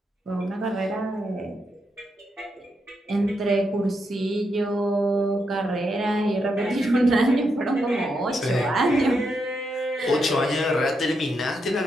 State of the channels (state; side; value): normal; both; correlation 0.82